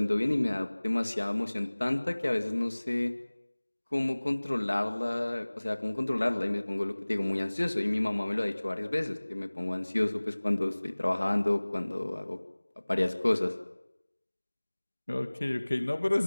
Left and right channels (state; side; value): inverted; both; correlation -1.00